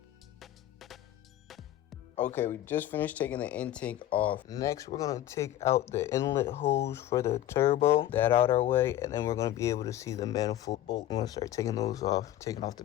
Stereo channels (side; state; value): right; quieter; 13.0 dB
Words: Okay, we just finished taking the intake off. Next, we're gonna take out the inlet hose for the turbo, that out our way, and then we're gonna be able to see the manifold bolt. I'm gonna start taking those off, taking off the